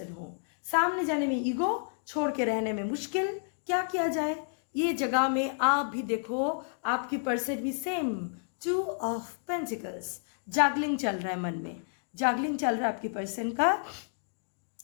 हो, सामने जाने में ईगो, छोड़ के रहने में मुश्किल, क्या किया जाए। ये जगह में आप भी देखो, आपकी पर्सन भी सेम 2 ऑफ पेंटिकल्स, जागलिंग चल रहा है, मन में जागलिंग चल रहा है आपकी पर्सन का,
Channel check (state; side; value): silent; right; digital silence